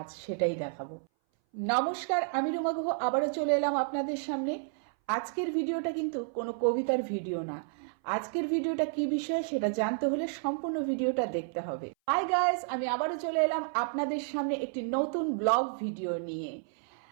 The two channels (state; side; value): silent; left; 57 dB below the other